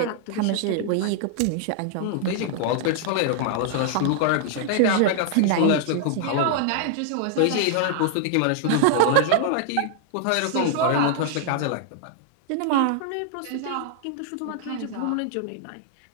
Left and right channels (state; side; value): different; both; correlation 0.00